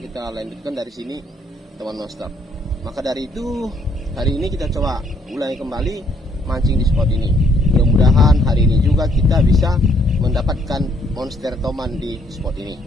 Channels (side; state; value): both; normal; correlation 0.68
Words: lanjutkan dari sini teman monster. Maka dari itu hari ini kita coba ulangi kembali mancing di spot ini. Mudah-mudahan hari ini juga kita bisa mendapatkan monster toman di spot ini.